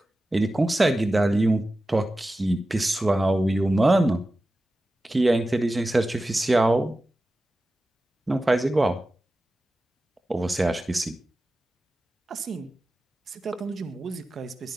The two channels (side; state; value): both; normal; correlation 0.94